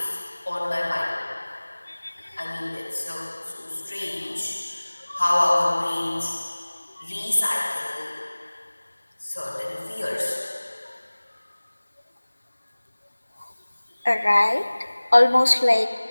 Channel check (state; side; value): inverted; both; correlation -1.00